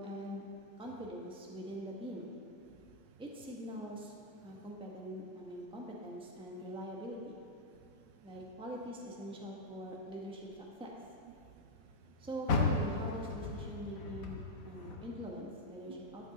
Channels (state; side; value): normal; both; correlation -0.05